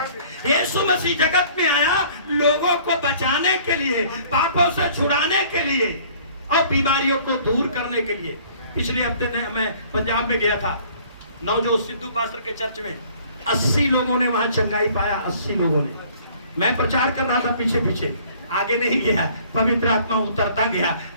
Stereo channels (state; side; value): inverted; both; correlation -0.54